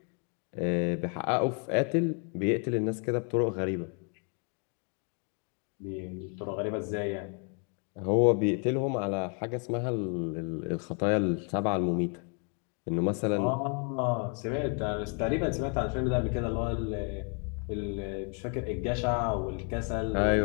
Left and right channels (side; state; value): right; quieter; 39.6 dB